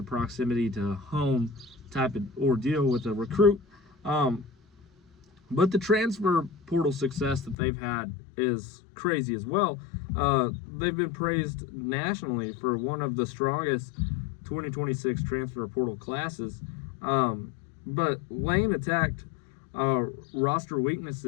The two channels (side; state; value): right; drops out; at 7.6 s